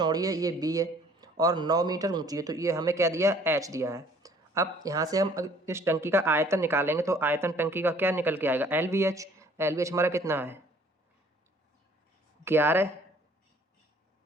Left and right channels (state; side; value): normal; both; correlation 0.57